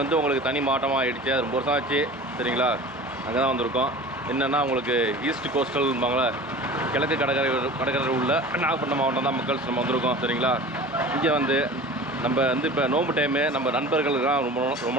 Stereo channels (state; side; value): normal; both; correlation 0.38